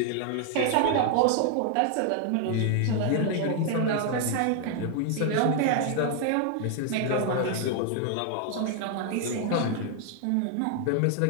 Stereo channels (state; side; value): different; both; correlation 0.00